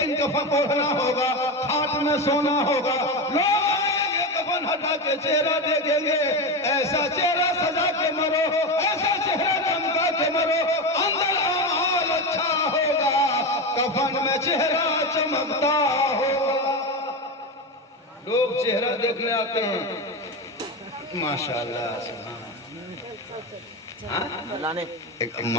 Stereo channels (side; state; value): both; normal; correlation 0.18